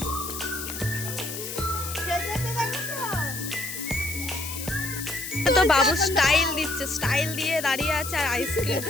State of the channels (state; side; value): noise; left; hiss, 7 dB below the sound